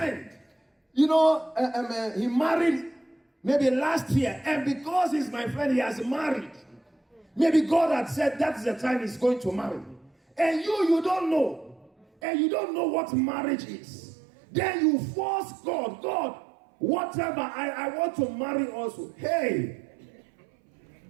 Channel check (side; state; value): left; drops out; at 12.1 s